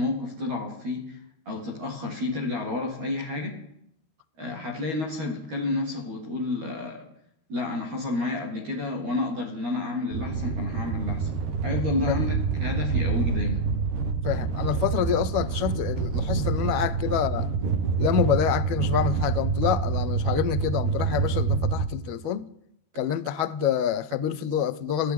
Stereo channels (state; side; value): late; left; 12 ms